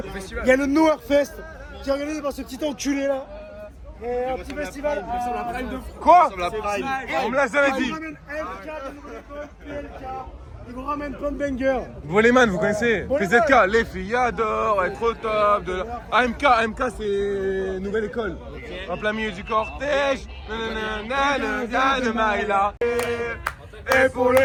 il y a le Noirfest qui est organisé par ce petit enculé là. Et un petit festival. Quoi? On me l'a jamais dit. Ils ramènent MK de Nouvelle École, PLK, ils vous ramènent plein de bangers. Volleyman, vous connaissez? PZK, les filles adorent être au top de la... AMK c'est Nouvelle École. En plein milieu du cortège. De Maïla. Et pour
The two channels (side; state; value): both; identical; correlation 1.00